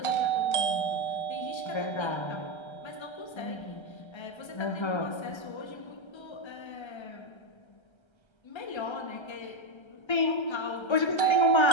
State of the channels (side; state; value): right; late; 1.3 ms